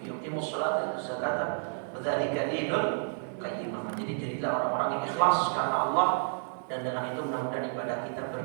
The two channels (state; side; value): silent; left; digital silence